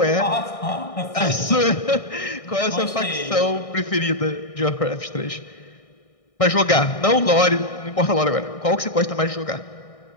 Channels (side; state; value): right; late; 1.6 ms